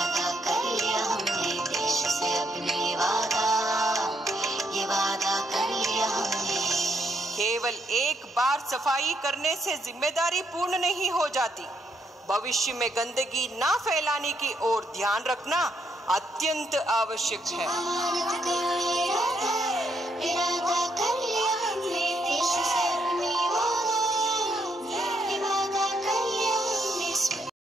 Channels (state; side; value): normal; both; correlation 0.75